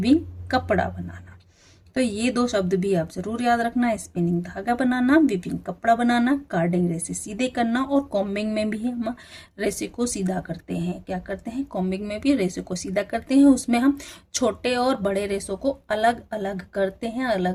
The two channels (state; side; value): identical; both; correlation 1.00